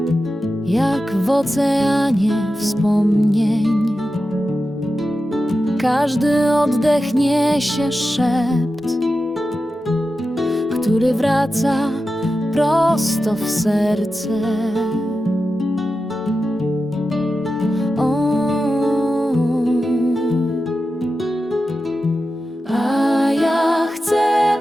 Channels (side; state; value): both; normal; correlation 0.92